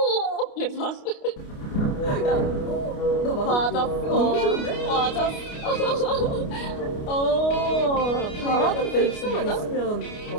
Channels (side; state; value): right; late; 29 ms